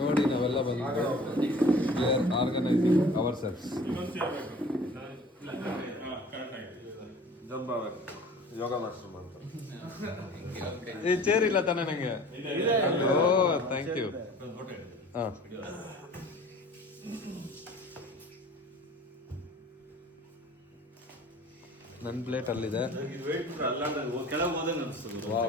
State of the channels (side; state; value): both; normal; correlation 0.46